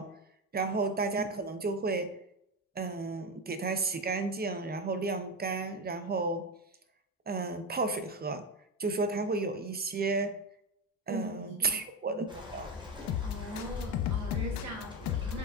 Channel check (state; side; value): normal; both; correlation 0.15